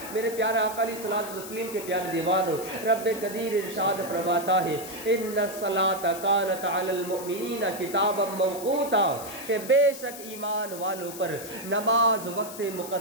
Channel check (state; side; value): noise; left; hiss, 12 dB below the sound